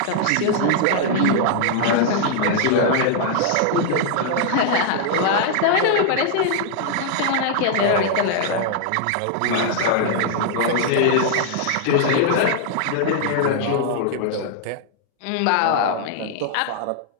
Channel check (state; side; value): different; both; correlation -0.01